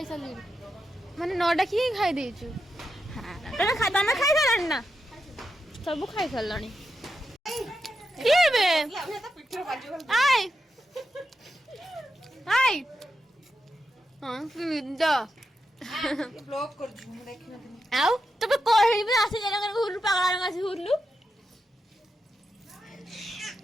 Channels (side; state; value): both; normal; correlation 0.87